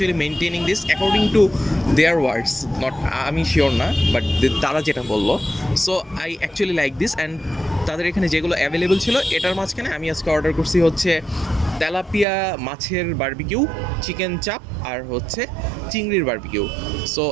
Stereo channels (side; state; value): left; drops out; at 12.2 s